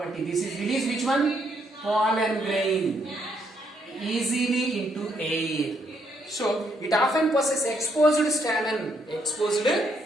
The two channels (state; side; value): normal; both; correlation 0.73